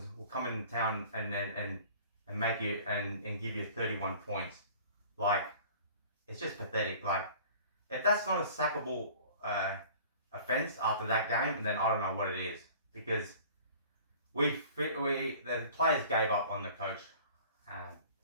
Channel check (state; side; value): inverted; both; correlation -0.46